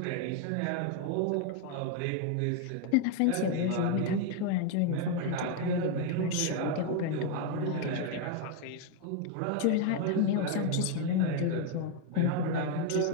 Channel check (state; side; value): different; both; correlation 0.01